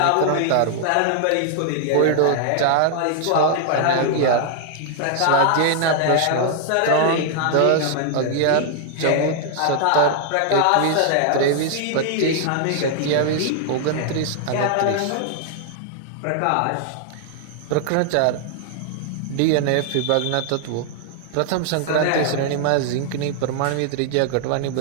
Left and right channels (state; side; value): different; both; correlation 0.00